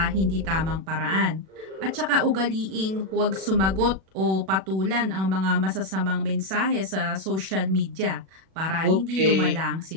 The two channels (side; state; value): left; late; 37 ms